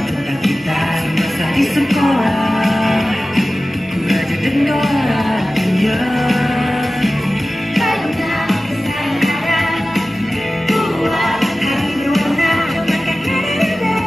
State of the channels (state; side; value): normal; both; correlation 0.96